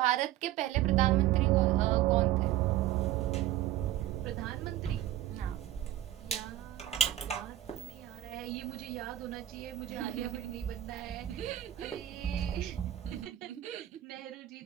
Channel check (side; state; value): left; quieter; 13.2 dB